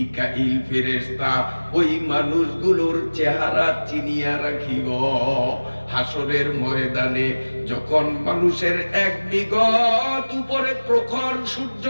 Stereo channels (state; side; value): inverted; both; correlation -1.00